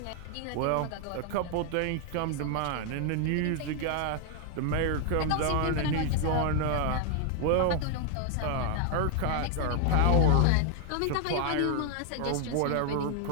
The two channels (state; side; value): different; both; correlation 0.00